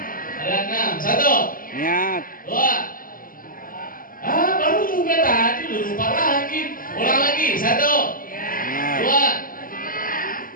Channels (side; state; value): right; late; 0.41 ms